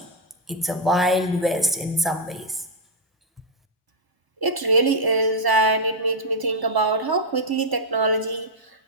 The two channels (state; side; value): normal; both; correlation -0.02